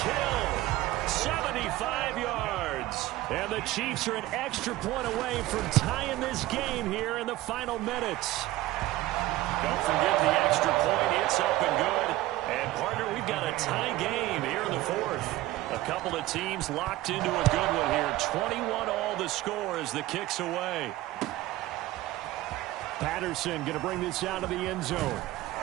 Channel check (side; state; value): left; quieter; 16.8 dB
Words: Hill, 75 yards. And the Chiefs are an extra point away from tying this game here in the final minutes. Don't forget the extra point. It's up and good. And, partner, we've got a tie game here in the 4th. A couple of teams locked into a good one here. 21 all the score as the kick's away. Patterson going to bring this out of the end zone.